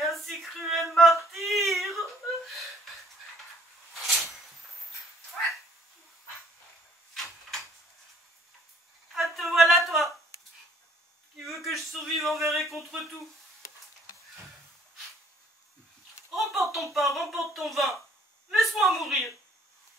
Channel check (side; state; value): both; normal; correlation 0.60